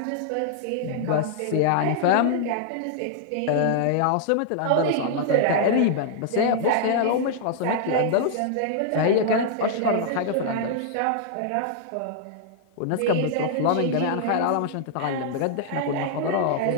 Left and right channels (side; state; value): both; different; correlation -0.01